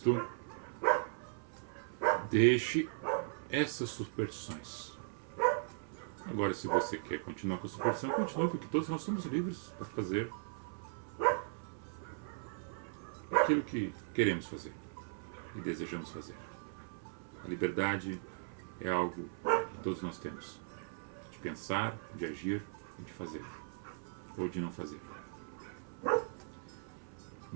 deixe essas superstições. Agora, se você quer continuar com a superstição, continue, porque todos nós somos livres para fazer aquilo que queremos fazer e desejamos fazer. A liberdade é algo que todos nós temos, de pensar, de agir e de fazer, ou de não fazer.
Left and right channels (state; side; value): silent; left; 52 dB below the other